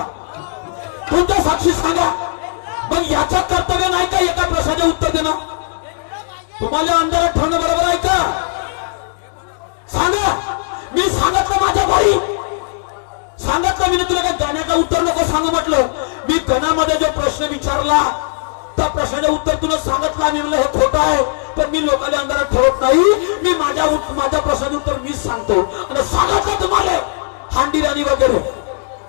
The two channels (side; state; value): right; silent; digital silence